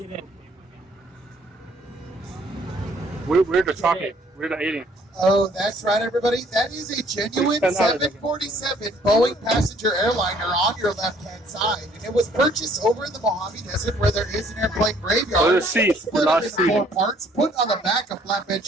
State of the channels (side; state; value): both; normal; correlation 0.61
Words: We're the chocolate. We're the alien. Oh, that's right, everybody. That is a genuine 747 Boeing passenger airliner on your left-hand side. And it was purchased over in the Mojave Desert where there is an airplane graveyard. Oh, the seats. Split up into 4 parts, put on the back of flatbed